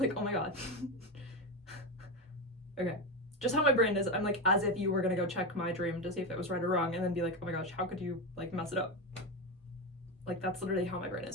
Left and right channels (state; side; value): normal; both; correlation 0.15